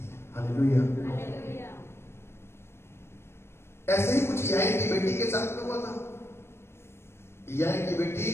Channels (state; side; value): late; right; 0.12 ms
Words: हालेलुया। ऐसे ही कुछ याइन की बेटी के साथ में हुआ था। याइन की बेटी